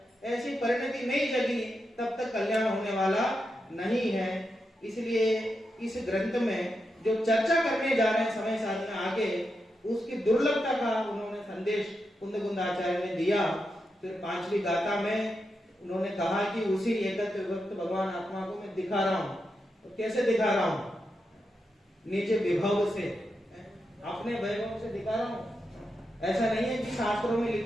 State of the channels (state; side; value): normal; both; correlation 0.86